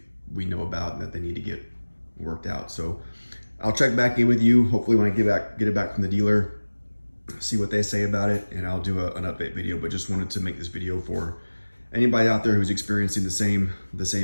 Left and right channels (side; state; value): both; inverted; correlation -1.00